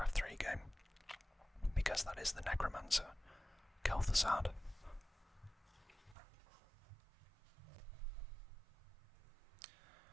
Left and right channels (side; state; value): left; drops out; at 6.2 s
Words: 3 game, because that is the Necromancer, Kel'Thuzad.